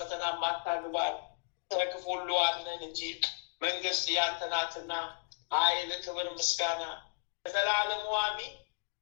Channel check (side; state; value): right; silent; digital silence